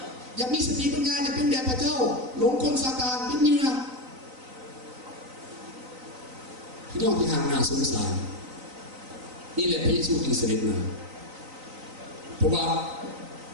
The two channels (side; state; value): left; late; 3.9 ms